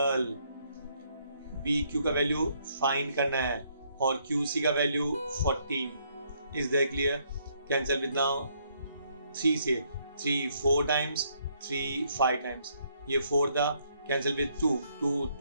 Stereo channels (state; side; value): inverted; both; correlation -0.71